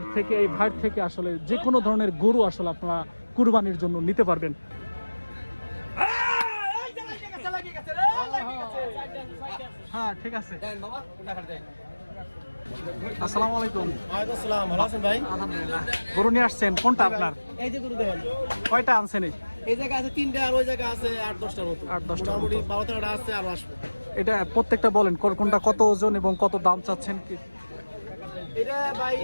থেকে এই ভাইয়ের থেকে আসলে যে কোনো ধরনের গরু আসলে আপনারা কুরবানির জন্য নিতে পারবেন। হ্যাঁ ঠিক আছে। আসসালামু আলাইকুম। আসসালাম, ভালো আছেন ভাই? আলহামদুলিল্লাহ। গরু নিয়ে আসছেন কোনটা আপনার? এই যে গরু দেখেন, কয়টা আনছেন? এই জায়গা আছে 3টা আর ওই জায়গা আছে 8-10টার মতো। 8-10টার মতো। মোটামুটি 12-13টা আছে আর আসবে। এটা প্রত্যেকটা বলেন কোনটা কত ওজন এবং কত দাম চাচ্ছেন কি? এটা ভাই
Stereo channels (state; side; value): inverted; both; correlation -1.00